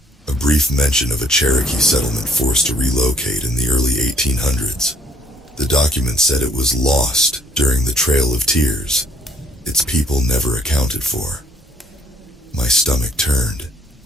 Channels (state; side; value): normal; both; correlation 0.61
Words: A brief mention of a Cherokee settlement forced to relocate in the early 1800s. The document said it was lost during the Trail of Tears. Its people never accounted for. My stomach turned.